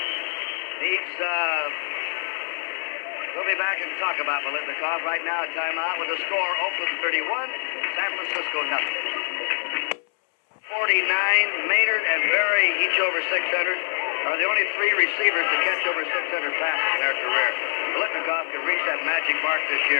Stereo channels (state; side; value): silent; right; 62 dB below the other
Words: needs, we'll be back and talk about Biletnikoff. Right now, a timeout with the score, Oakland 31, San Francisco nothing. 49, Maynard and Berry, each over 600, are the only 3 receivers to catch over 600 passes in their career. Biletnikoff can reach that magic mark this